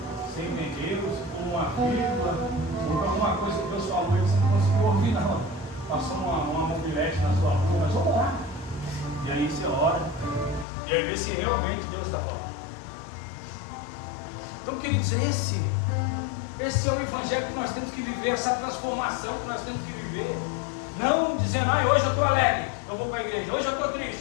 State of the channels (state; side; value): drops out; right; at 10.7 s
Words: você entendeu, se pôr uma vírgula, ou alguma coisa que Deus falou e você não conseguiu ouvir, não. Passou uma mobilete na sua rua, mas vamos orar. E aí você ora, e aí vê se realmente Deus está falando. Então, queridos, esse é o evangelho que nós temos que viver, essa transformação que nós temos que viver. Não dizendo, hoje eu estou alegre, eu vou para a igreja. Hoje eu estou triste,